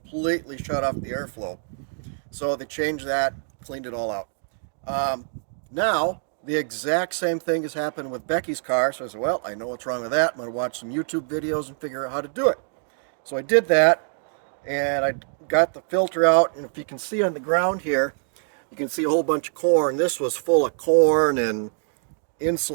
shut off the airflow. So they changed that, cleaned it all out. Now, the exact same thing has happened with Becky's car. So I said, well, I know what's wrong with that. I'm going to watch some YouTube videos and figure out how to do it. So I did that, and I got the filter out. And if you can see on the ground here, you can see a whole bunch of corn. This was full of corn and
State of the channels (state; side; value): silent; left; 61 dB below the other